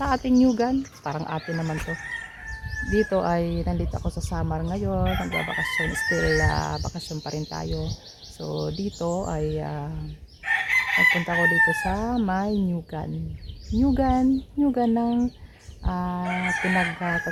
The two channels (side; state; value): both; identical; correlation 1.00